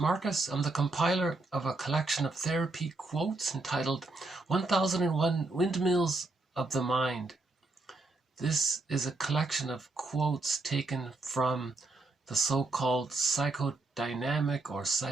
I'm the compiler of a collection of therapy quotes entitled 1001 Windmills of the Mind. This is a collection of quotes taken from the so-called psychodynamic or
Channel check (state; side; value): quieter; left; 3.1 dB